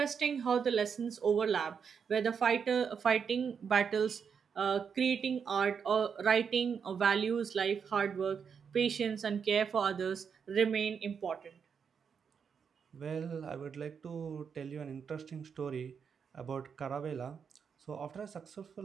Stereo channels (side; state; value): left; quieter; 6.6 dB